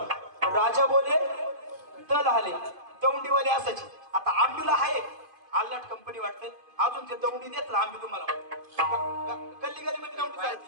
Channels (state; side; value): late; left; 2.5 ms